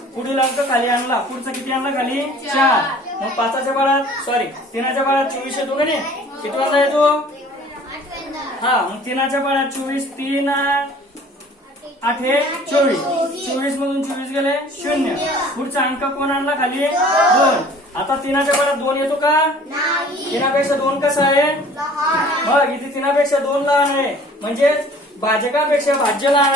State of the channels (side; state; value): both; normal; correlation 0.50